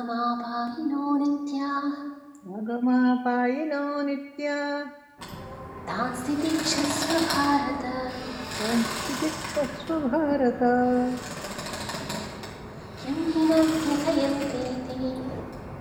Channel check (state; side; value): identical; both; correlation 1.00